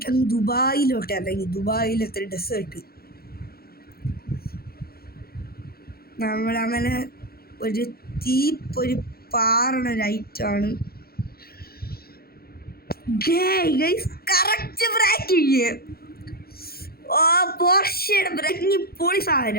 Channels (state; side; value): late; right; 0.44 ms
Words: ദുബായിലോട്ട് ഇറങ്ങി. ദുബായിലത്തെ ഡെസേർട്ട് നമ്മളങ്ങനെ ഒരു ഒരു പാറണ ലൈറ്റാണ്. Correct braking. ഓ പോർഷയുടെ ബ്രേക്കിങ് പൊളി